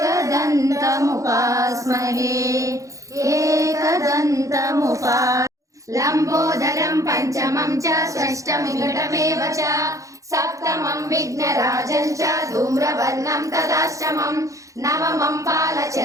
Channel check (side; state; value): left; late; 0.16 ms